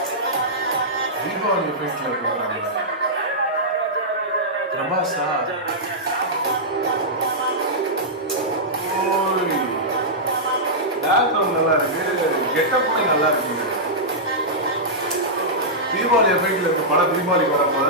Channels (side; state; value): both; normal; correlation -0.11